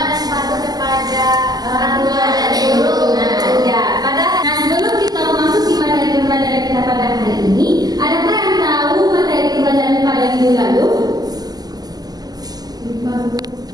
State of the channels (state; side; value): late; left; 0.19 ms